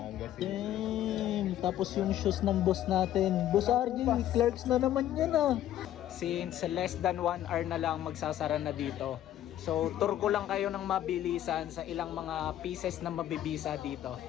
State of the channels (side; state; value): right; quieter; 12.3 dB